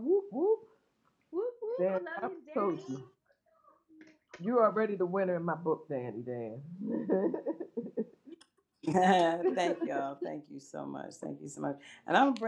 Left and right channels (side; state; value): both; identical; correlation 1.00